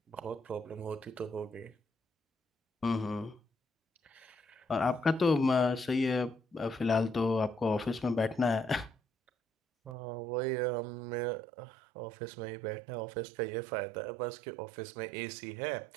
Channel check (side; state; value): left; drops out; at 10.0 s